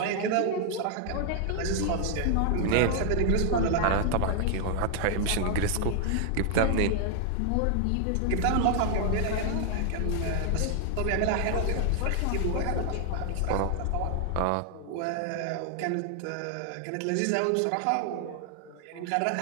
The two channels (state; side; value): different; both; correlation 0.00